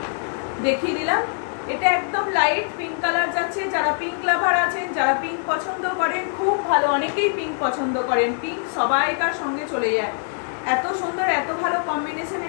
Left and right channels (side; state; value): right; silent; 56 dB below the other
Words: দেখিয়ে দিলাম। এটা একদম লাইট পিঙ্ক কালার যাচ্ছে, যারা পিঙ্ক লাভার আছেন, যারা পিঙ্ক পছন্দ করেন, খুব ভালো, অনেকেই পিঙ্ক পছন্দ করেন, পিঙ্ক সবাইকার সঙ্গে চলে যায়, এত সুন্দর এত ভালো কম্বিনেশন,